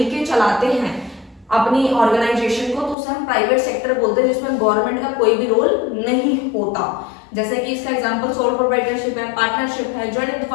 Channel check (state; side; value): drops out; right; at 3.0 s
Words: चलाते हैं अपनी ऑर्गेनाइजेशन को, तो उसे हम प्राइवेट सेक्टर बोलते हैं, जिसमें गवर्नमेंट का कोई भी रोल नहीं होता। जैसे कि इसका एग्जांपल सोल प्रोप्राइटरशिप है, पार्टनरशिप है, जॉइंट इनटू